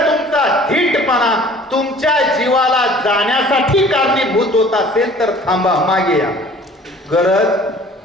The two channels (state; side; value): normal; both; correlation 0.50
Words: तुमचा धीटपणा तुमच्या जीवाला जाण्यासाठी कारणीभूत होत असेल तर थांबा, मागे या,